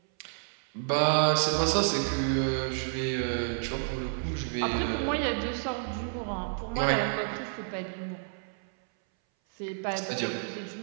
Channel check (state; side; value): silent; left; 58 dB below the other